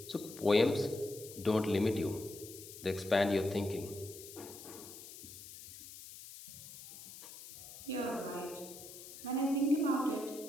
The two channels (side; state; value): left; noise; hiss, 14 dB below the sound